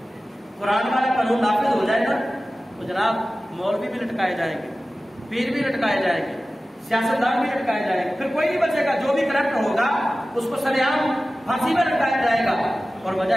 قرآن والا قانون نافذ ہو جائے نا تو جناب مولوی بھی لٹکائے جائیں گے، پیر بھی لٹکائے جائیں گے، سیاستدان بھی لٹکائے جائیں گے، پھر کوئی نہیں بچے گا، جو بھی کرپٹ ہوگا اس کو سریعام پھانسی میں لٹکایا جائے گا۔ اور وجہ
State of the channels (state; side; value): normal; both; correlation 0.96